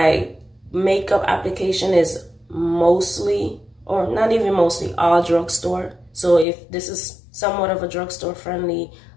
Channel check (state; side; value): drops out; right; at 6.5 s